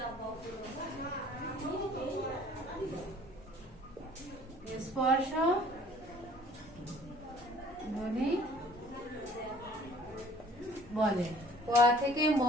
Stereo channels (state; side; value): normal; both; correlation 0.53